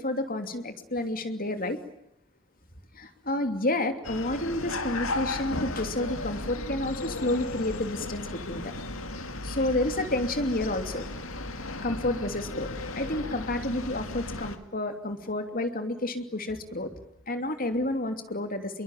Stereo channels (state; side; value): normal; both; correlation 0.26